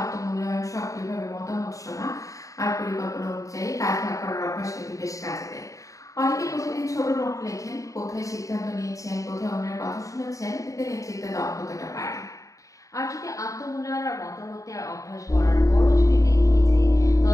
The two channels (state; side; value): late; right; 0.16 ms